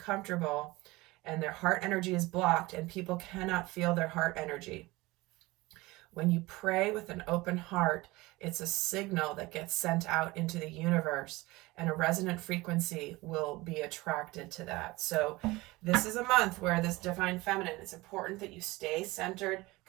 and their heart energy is blocked and people cannot feel their heart energy. When you pray with an open heart, it's a signal that gets sent out into the universe, and a resonant frequency will be attracted to that. So this is a month where this divine feminine, it's important that you stay centered,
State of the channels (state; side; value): quieter; left; 21.1 dB